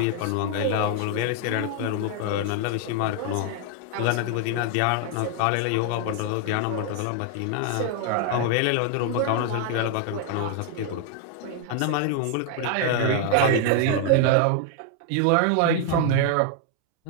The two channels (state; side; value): different; both; correlation 0.00